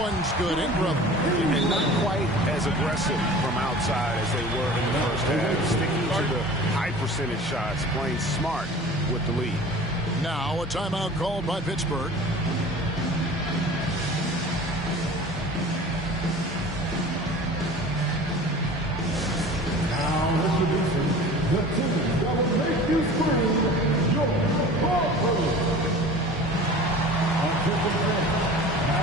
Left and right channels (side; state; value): both; normal; correlation 0.41